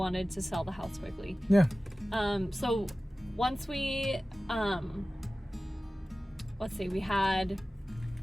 to sell the house quickly. Yeah. So once we let's see, we had,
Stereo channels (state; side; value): normal; both; correlation 0.96